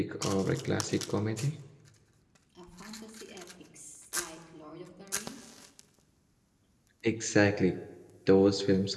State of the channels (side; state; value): both; identical; correlation 1.00